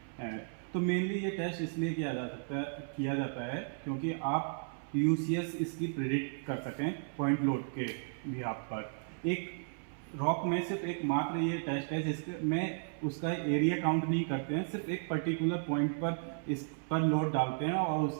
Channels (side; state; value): left; silent; 55 dB below the other